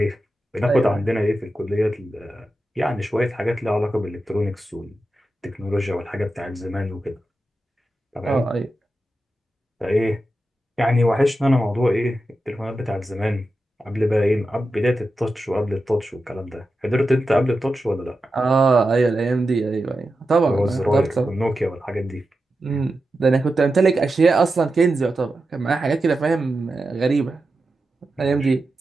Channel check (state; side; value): normal; both; correlation 0.90